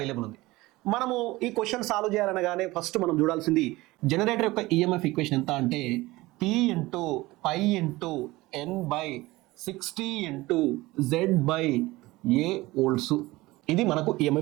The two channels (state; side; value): quieter; left; 19.9 dB